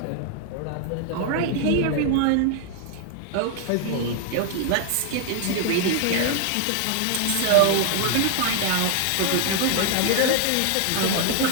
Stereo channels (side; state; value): both; different; correlation 0.00